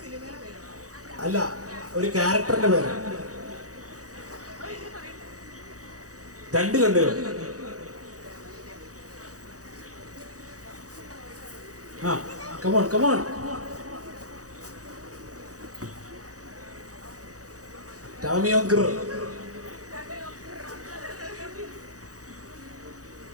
അല്ല, ഒരു ക്യാരക്ടറിന്റെ പേര്. രണ്ട് കണ്ടുകൾ. ആ കമോൺ കമോൺ. ടാമിയോങ്കർ.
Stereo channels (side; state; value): left; late; 0.66 ms